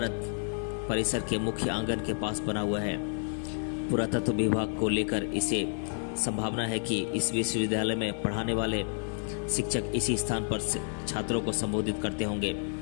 परिसर के मुख्य आंगन के पास बना हुआ है। पुरातत्व विभाग को लेकर इसे संभावना है कि इस विश्वविद्यालय में पढ़ाने वाले शिक्षक इसी स्थान पर छात्रों को संबोधित करते होंगे।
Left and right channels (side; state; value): right; silent; 58 dB below the other